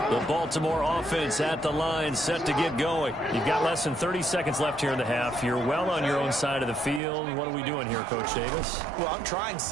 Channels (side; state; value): left; drops out; at 7.0 s